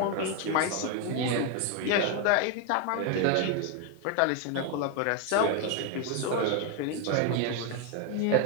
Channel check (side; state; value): both; different; correlation 0.01